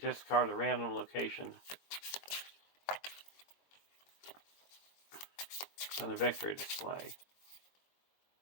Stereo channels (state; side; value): late; right; 22 ms